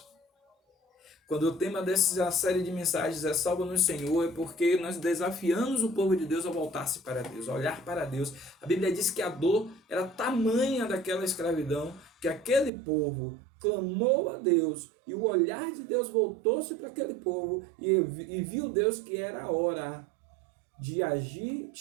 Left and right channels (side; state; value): left; drops out; at 12.7 s